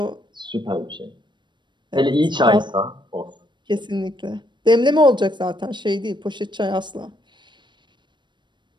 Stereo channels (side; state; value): left; late; 0.22 ms